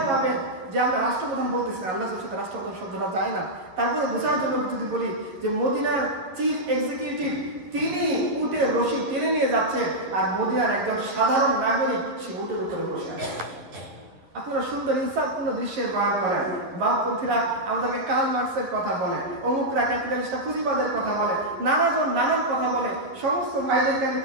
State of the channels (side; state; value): left; late; 11 ms